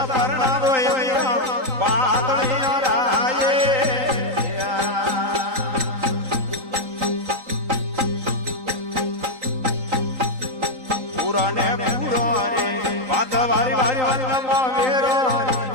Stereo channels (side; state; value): left; late; 3.9 ms